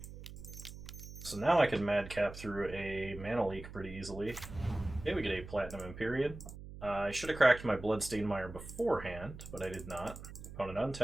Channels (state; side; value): noise; right; hum, 13 dB below the sound